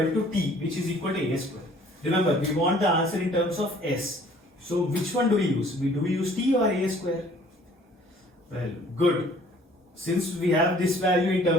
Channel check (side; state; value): both; normal; correlation 0.55